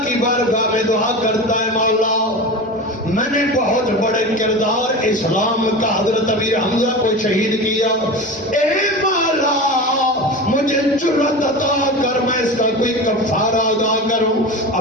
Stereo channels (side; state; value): both; normal; correlation 0.28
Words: کی بارگاہ میں دعا کرتا ہے مولا میں نے بہت بڑے کردار اسلام کا حضرت امیر حمزہ کو شہید کیا. اے مولا مجھے جرأت عطا کر میں اس کا کوئی کفارہ ادا کروں.